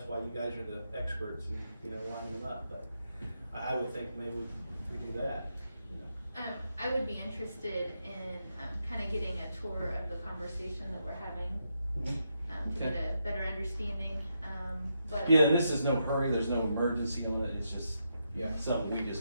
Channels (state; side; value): inverted; both; correlation -0.82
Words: why you guys are the experts and, you know, line them up, but I would think maybe we do that, you know. I would be interested in, kind of getting a tour of the conversation that we're having, Mhm. to get a better understanding, but. Yeah, and this is no hurry, there's no emergency on it, it's just Yeah. something we